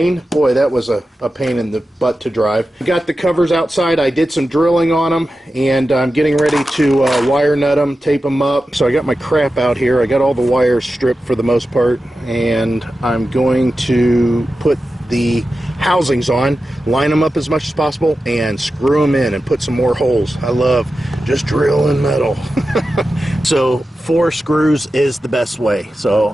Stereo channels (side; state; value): both; normal; correlation 0.92